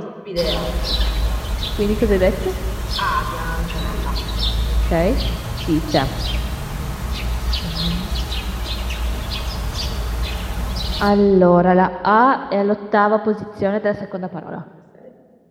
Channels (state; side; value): identical; both; correlation 1.00